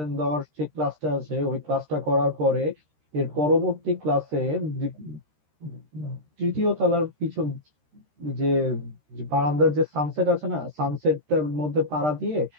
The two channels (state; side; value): late; left; 13 ms